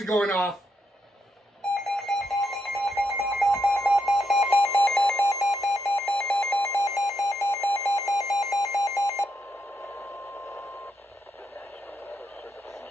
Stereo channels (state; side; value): normal; both; correlation 0.80